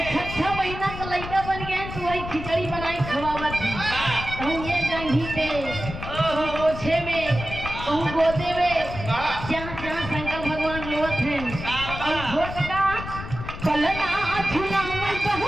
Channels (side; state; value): left; noise; rumble, 9 dB below the sound